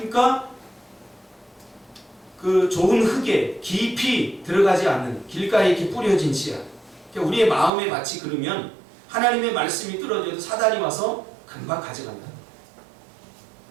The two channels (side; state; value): left; drops out; at 7.7 s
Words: 그 좋은 흙에 깊이 들어가지 않는 길가에 이렇게 뿌려진 씨앗. 그러니까 우리의 마음의 밭이 그러면 하나님의 말씀이 떨어져도 사단이 와서 금방 가져간다.